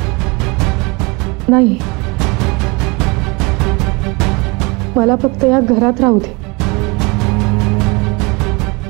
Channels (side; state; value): left; quieter; 27.3 dB